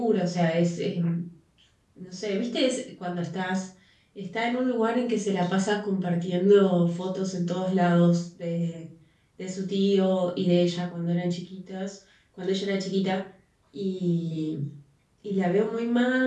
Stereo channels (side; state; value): both; identical; correlation 1.00